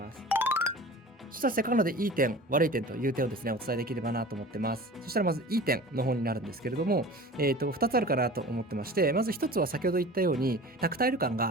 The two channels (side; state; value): both; normal; correlation 0.39